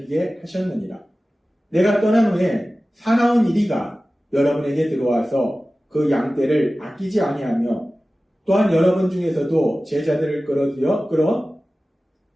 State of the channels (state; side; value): normal; both; correlation 0.96